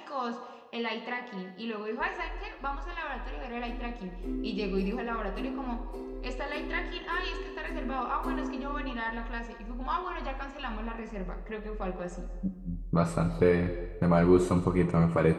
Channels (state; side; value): identical; both; correlation 1.00